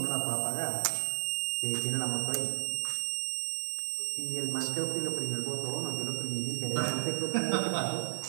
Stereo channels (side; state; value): left; silent; digital silence